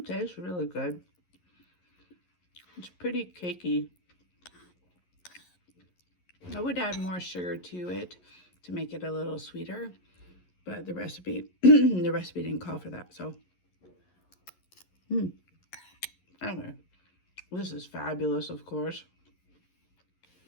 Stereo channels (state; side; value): late; right; 11 ms